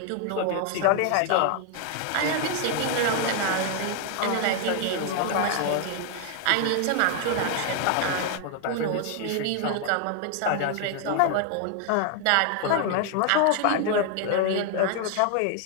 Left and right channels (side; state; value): both; different; correlation 0.00